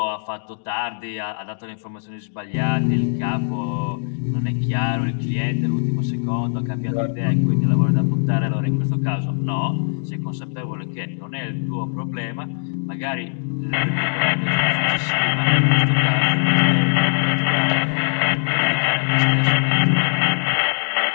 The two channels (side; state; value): right; silent; 59 dB below the other